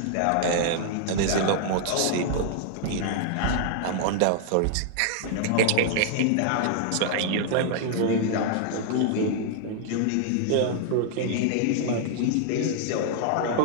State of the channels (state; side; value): different; both; correlation 0.00